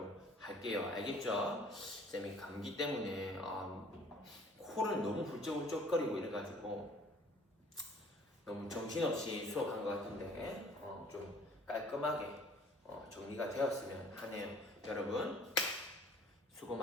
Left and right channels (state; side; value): normal; both; correlation 0.53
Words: 할게요. 알겠죠? 쌤이 감기 때문에 코를 너무 훌쩍훌쩍거리고 이래가지고 너무 정신없이 수업한 것 같은데 좀 깔끔하게 정리가 되었으면 하네요. 여러분 수고